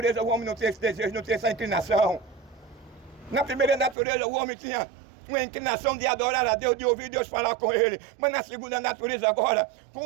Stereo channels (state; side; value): drops out; left; at 4.0 s